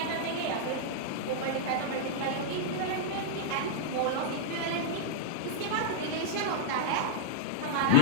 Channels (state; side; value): different; both; correlation -0.02